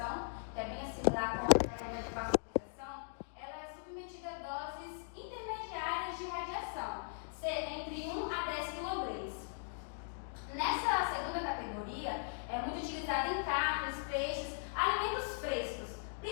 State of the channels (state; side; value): silent; right; digital silence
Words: que é bem similar com a técnica de pasteurização, ela é submetida a doses intermediárias de radiação, entre 1 a 10 kg. Nessa segunda categoria, é muito utilizada em carnes, peixes, alimentos frescos.